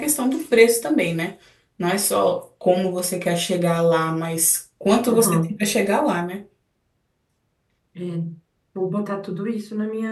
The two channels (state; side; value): identical; both; correlation 1.00